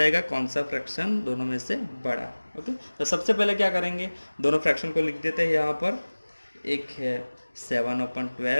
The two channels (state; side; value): inverted; both; correlation -1.00